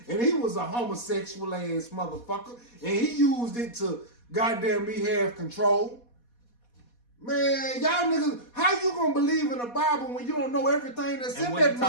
and he was a homosexual ass motherfucker, and he used it to goddamn me have control. Man, y'all niggas, how you gonna believe in the Bible when you don't know everything that's in that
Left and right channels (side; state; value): right; late; 4.2 ms